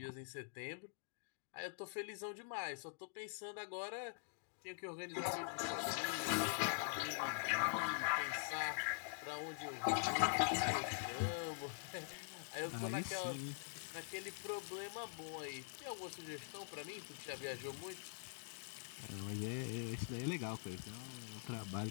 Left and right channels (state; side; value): silent; right; digital silence